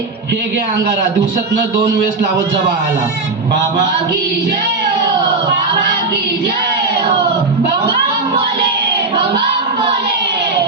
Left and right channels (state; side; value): quieter; left; 3.7 dB